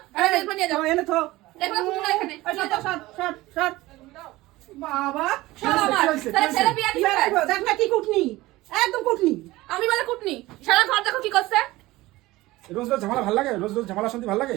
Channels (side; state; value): left; quieter; 18.7 dB